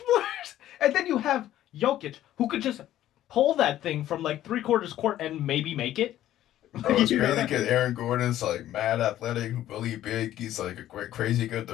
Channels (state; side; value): quieter; right; 12.9 dB